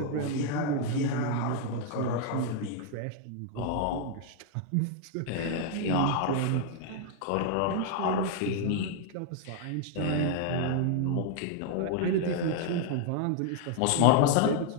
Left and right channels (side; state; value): both; different; correlation 0.00